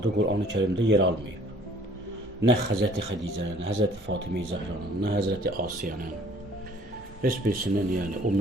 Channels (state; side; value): normal; both; correlation 0.55